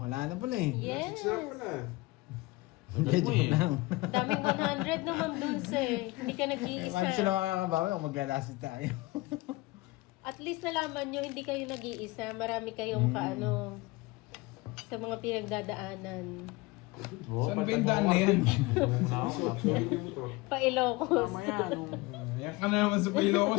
na pala eh. Yes. Sarap pala. Hindi, joke lang. Daming 100 naman Dulce. Hindi ka Paano nag-iisa. sila makakabawi kung maglalasit tayo? At least nalaman nyo, hindi kayo nag-iisa. Marami kayong kaano sa mga pinagdadaanan. Saan ba yung daan na yan? Pa-Ilocos. Tama yan. Yan ka na naman sa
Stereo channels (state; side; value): quieter; right; 22.2 dB